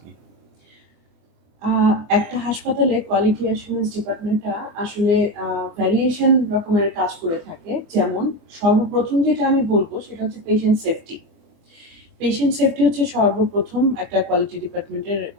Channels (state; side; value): late; left; 24 ms